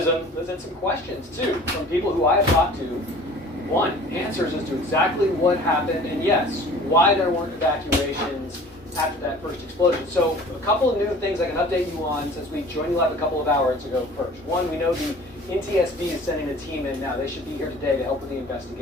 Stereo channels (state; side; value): normal; both; correlation 0.46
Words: and some questions too from people who I have talked to. One, answers as to exactly what happened, and yes, why there weren't evacuations after that first explosion. So a couple of new things I can update you on since we joined you live a couple of hours ago first. One, we know the NTSB is sending a team in now. They should be here today to help with the